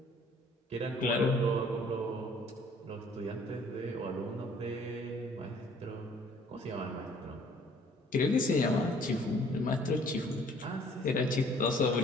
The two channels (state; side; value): normal; both; correlation 0.57